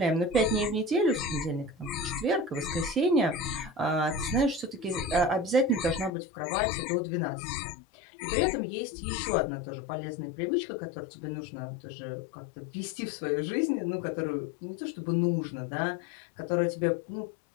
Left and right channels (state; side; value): drops out; right; at 6.1 s